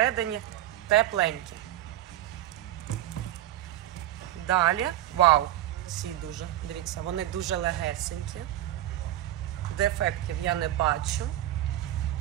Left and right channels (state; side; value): quieter; left; 13.7 dB